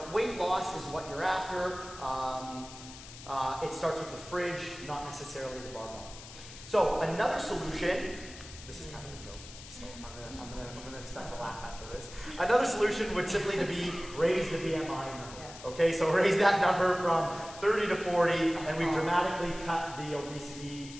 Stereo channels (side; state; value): left; noise; hiss, 15 dB below the sound